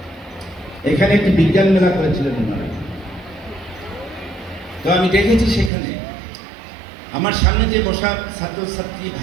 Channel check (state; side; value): drops out; left; at 5.7 s